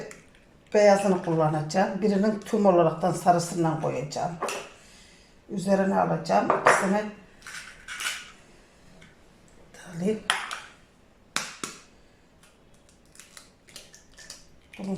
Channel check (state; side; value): identical; both; correlation 1.00